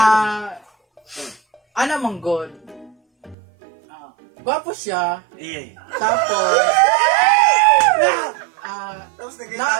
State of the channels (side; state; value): left; drops out; at 3.4 s